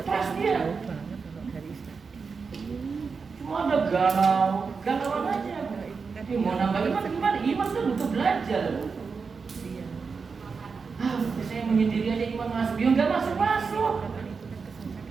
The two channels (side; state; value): left; quieter; 5.1 dB